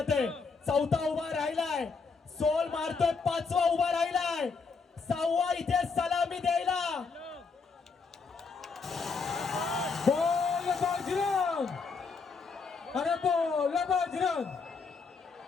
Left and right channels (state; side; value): quieter; right; 4.8 dB